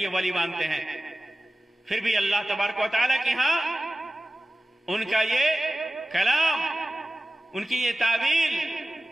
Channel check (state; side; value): normal; both; correlation 0.96